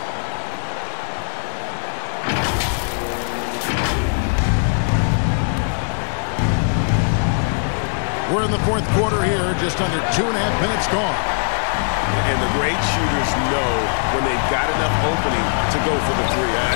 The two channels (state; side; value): silent; right; digital silence